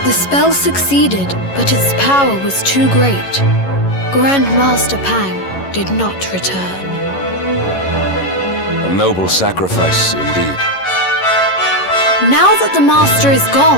The spell succeeded, but its power was too great. Grand Master Pang did not return. A noble sacrifice indeed. Now that the Master is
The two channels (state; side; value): late; right; 11 ms